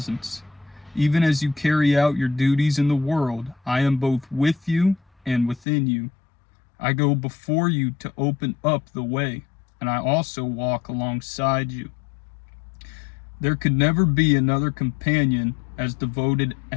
Even as you carry out your duties in the world, I am both with you and within you. I go before you to open up the way, and I also walk alongside you. There could never be another companion as devoted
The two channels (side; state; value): right; drops out; at 5.7 s